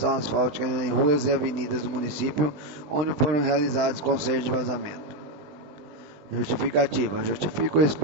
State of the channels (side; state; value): left; late; 20 ms